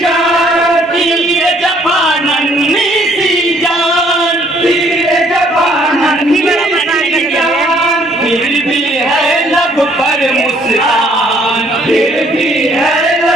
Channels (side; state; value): both; normal; correlation 0.63